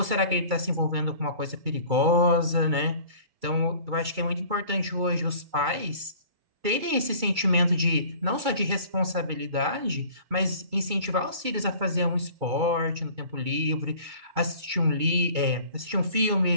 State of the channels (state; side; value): late; left; 2.3 ms